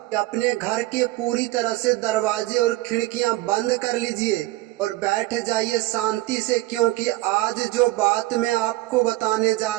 कि अपने घर के पूरी तरह से दरवाजे और खिड़कियां बंद कर लीजिए और बैठ जाइए शांति से, क्योंकि आज जो बात मैं आपको बताने जा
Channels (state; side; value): quieter; left; 18.3 dB